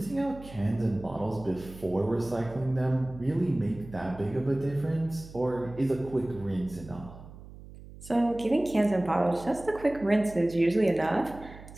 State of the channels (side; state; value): right; noise; hum, 17 dB below the sound